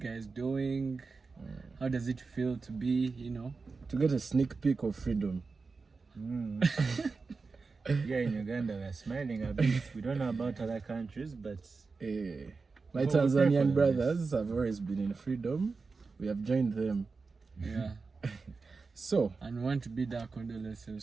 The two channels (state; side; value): quieter; left; 4.4 dB